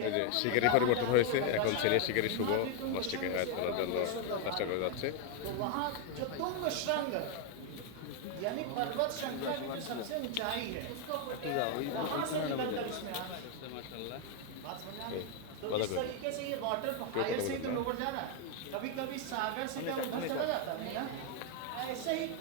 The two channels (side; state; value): both; different; correlation 0.01